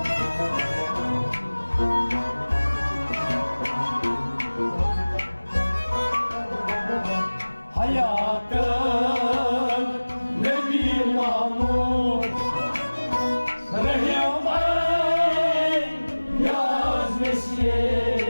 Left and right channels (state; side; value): inverted; both; correlation -1.00